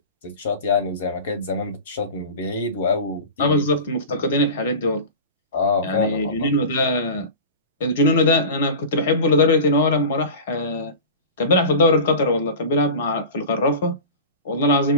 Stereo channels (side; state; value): both; inverted; correlation -0.32